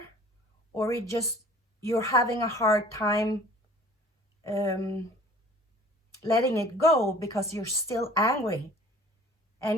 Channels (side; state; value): both; normal; correlation 0.49